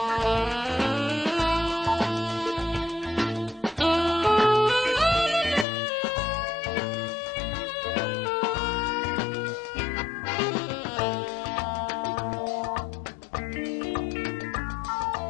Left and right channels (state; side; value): drops out; right; at 5.7 s